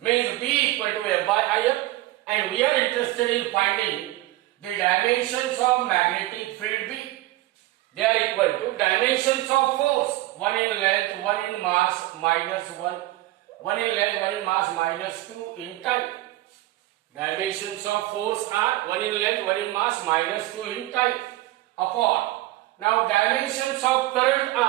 B equal to F by IL, and we are interested in finding the dimensions of magnetic field B. They are equal to dimensions of force 1 in length, 1 in mass minus 1 in length, 1 in mass minus 2 in time. Dimensions of force are 1 in length, 1 in mass minus 2 in time upon. Now dimensions of current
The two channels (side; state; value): left; quieter; 17.2 dB